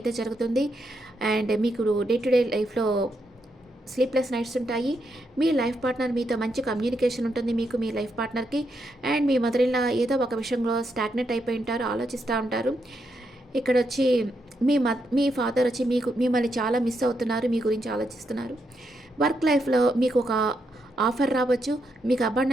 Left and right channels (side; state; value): both; normal; correlation 0.81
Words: జరుగుతుంది. అండ్ మీకు డే టు డే లైఫ్లో స్లీప్లెస్ నైట్స్ ఉంటాయి. మీ లైఫ్ పార్ట్నర్ మీతో మంచి కమ్యూనికేషన్ ఉంటుంది మీకు, మీ లైఫ్ పార్ట్నర్కి. అండ్ మీ మదర్ ఇన్ లా ఏదో ఒక విషయంలో స్టాగ్నెట్ అయిపోయి ఉంటారు, ఆలోచిస్తూ ఉంటారు. ఇక్కడ వచ్చి మీ ఫాదర్ వచ్చి మిమ్మల్ని చాలా మిస్ అవుతున్నారు, మీ గురించి ఆలోచిస్తున్నారు. వర్క్ లైఫ్లో మీకు ఒక ఆఫర్ రావచ్చు, మీకు